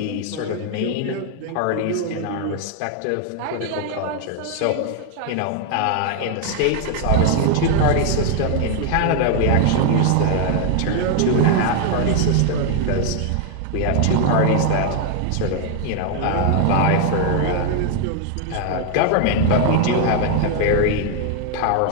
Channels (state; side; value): different; both; correlation 0.01